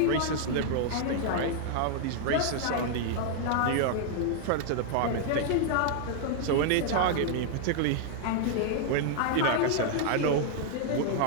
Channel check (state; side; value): different; both; correlation 0.00